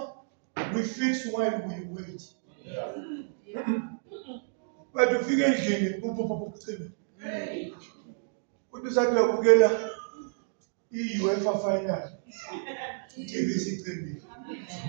we fix while we wait. But ufike endlini ucime. Uthi usathi uyabukela i-UEFA final. TV sicimile.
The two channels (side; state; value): left; silent; digital silence